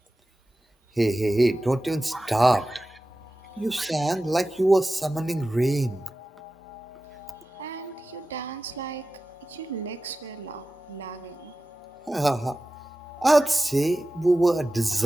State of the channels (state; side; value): normal; both; correlation 0.95